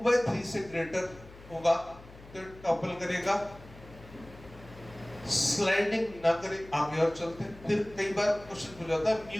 से ग्रेटर होगा तो टॉपल करेगा, स्लाइडिंग ना करे। आगे और चलते हैं। फिर कई बार क्वेश्चन पूछा जाता है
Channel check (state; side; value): noise; left; hum, 19 dB below the sound